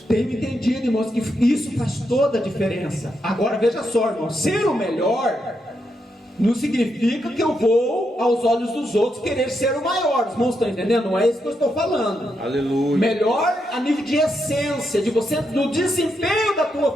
tenho entendido, irmãos, que isso faz toda a diferença. Agora veja só, irmãos, ser o melhor não significa que eu vou, aos olhos dos outros, querer ser o maior. Os irmãos estão entendendo? Não é isso que eu estou falando. Aleluia. Melhor a nível de essência, de você, do desempenho da tua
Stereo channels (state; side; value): normal; both; correlation 0.82